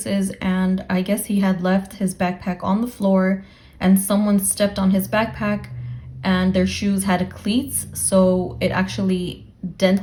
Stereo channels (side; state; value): both; identical; correlation 1.00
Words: and I guess he had left his backpack on the floor and someone stepped on his backpack and their shoes had cleats, so it actually